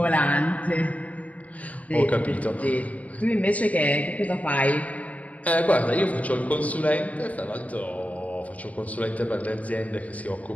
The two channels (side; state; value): right; late; 0.070 ms